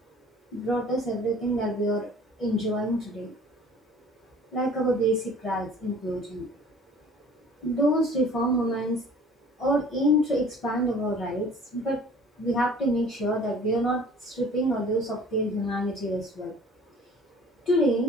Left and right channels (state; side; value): normal; both; correlation 0.49